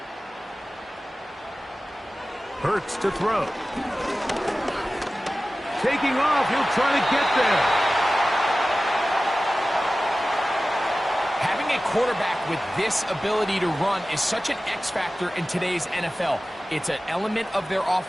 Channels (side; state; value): both; normal; correlation 0.96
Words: Hurts to throw. Taking off, he'll try to get there. Having Having a quarterback with this ability to run is such an X factor in today's NFL. It's an element of their